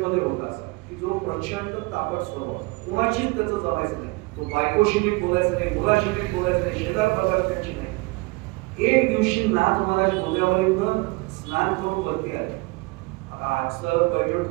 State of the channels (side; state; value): left; quieter; 25.3 dB